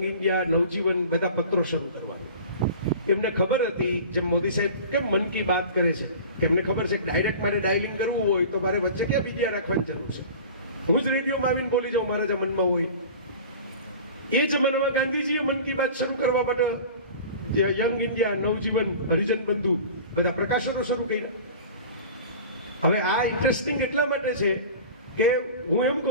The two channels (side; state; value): both; inverted; correlation -0.39